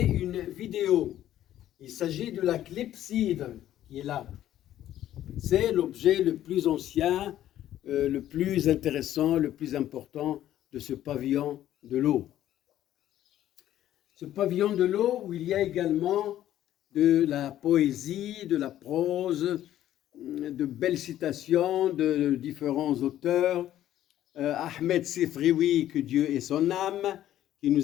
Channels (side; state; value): right; quieter; 12.5 dB